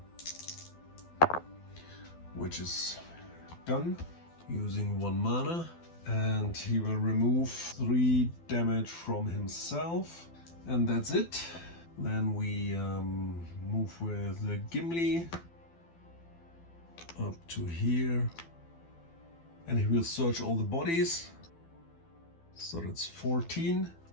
which is done using 1 mana, and he will remove 3 damage from himself, and that's it. Then we move with Gimli up to here, and he will search all the bodies. So that's 14.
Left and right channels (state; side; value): late; right; 12 ms